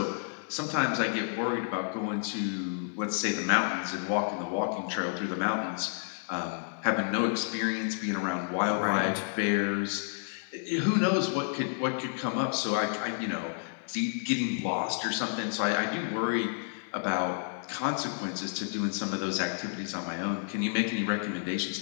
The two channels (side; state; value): right; silent; 57 dB below the other